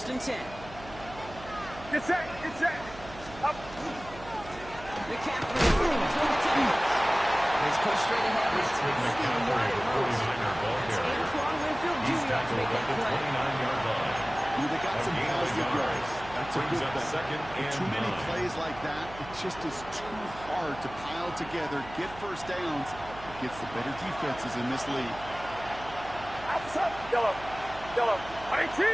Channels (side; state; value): right; noise; hum, 16 dB below the sound